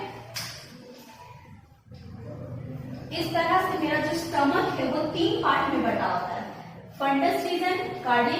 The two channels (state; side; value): identical; both; correlation 1.00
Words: इस तरह से मेरा जो स्टमक है वो 3 पार्ट में बटा होता है, फंडस रीजन,